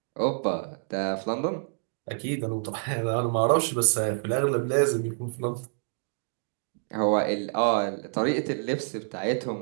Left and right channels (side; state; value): left; silent; digital silence